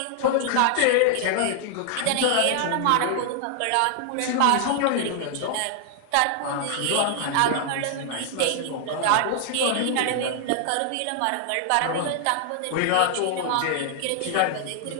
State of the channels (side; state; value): both; different; correlation 0.00